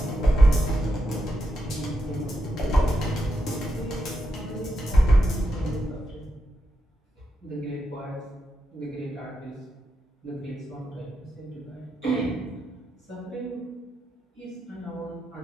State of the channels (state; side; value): normal; both; correlation 0.85